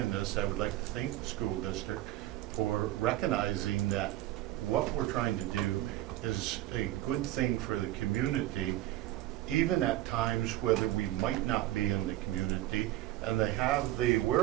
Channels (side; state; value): left; quieter; 15.2 dB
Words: this, I would like to thank the school district for recognizing that what we're trying to do is a good thing for the community, even at times whether we might not be in the community, and they have the